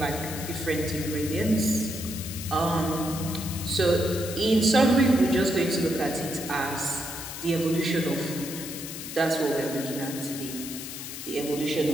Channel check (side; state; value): left; noise; hiss, 9 dB below the sound